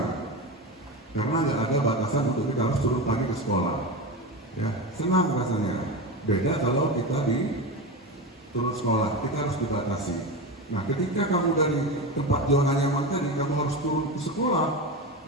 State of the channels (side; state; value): both; normal; correlation 0.21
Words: karena nggak ada batasan untuk kita harus turun pagi ke sekolah, ya. Senang rasanya. Beda kalau kita di turun sekolah, kita harus dibatasi. Nah, ketika kamu dari tempat zona nyaman tadi, kamu harus turun ke sekolah